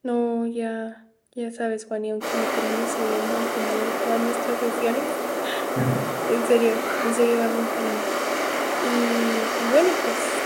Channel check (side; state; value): both; identical; correlation 1.00